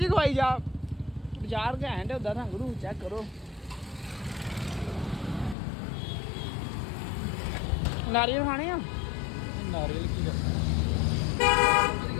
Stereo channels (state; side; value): drops out; right; at 5.6 s